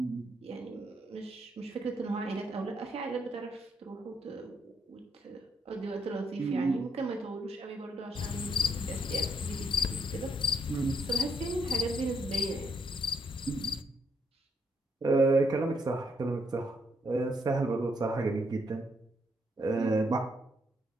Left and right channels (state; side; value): normal; both; correlation 0.73